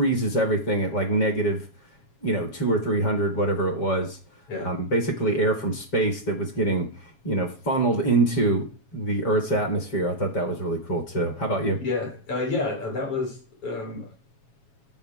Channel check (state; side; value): late; right; 7.3 ms